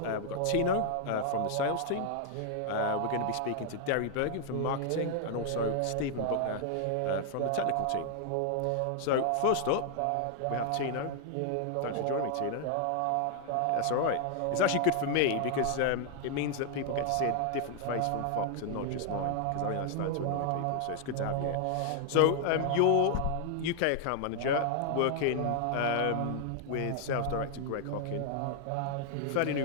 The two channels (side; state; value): both; different; correlation 0.00